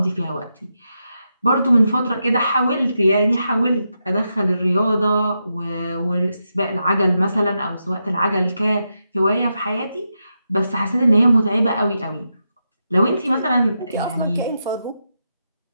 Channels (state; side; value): inverted; both; correlation -0.86